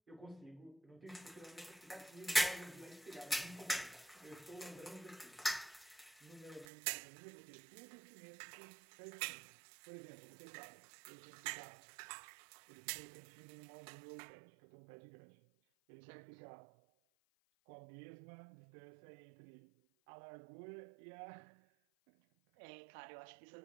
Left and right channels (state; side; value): drops out; left; at 6.7 s